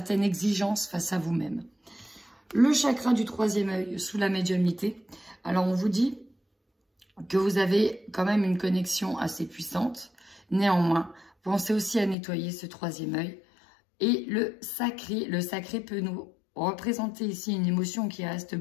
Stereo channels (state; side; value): drops out; right; at 12.2 s